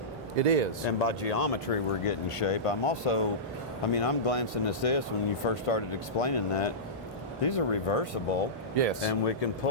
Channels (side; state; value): both; normal; correlation -0.18